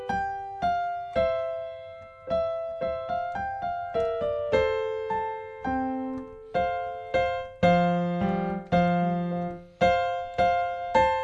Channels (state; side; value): identical; both; correlation 1.00